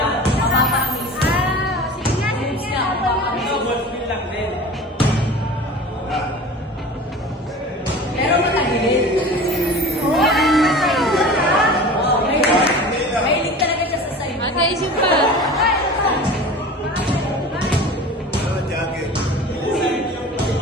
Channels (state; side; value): normal; both; correlation 0.38